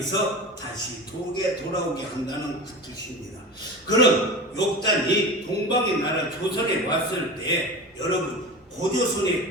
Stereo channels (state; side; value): normal; both; correlation 0.29